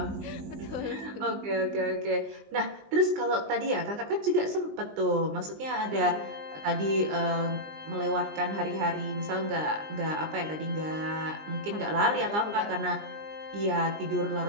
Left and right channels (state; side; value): late; left; 20 ms